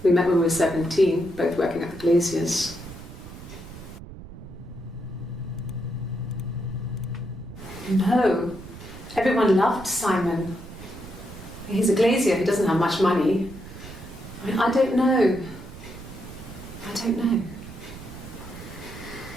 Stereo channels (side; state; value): right; noise; rumble, 14 dB below the sound